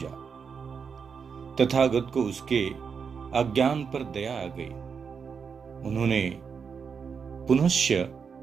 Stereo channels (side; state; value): left; quieter; 6.1 dB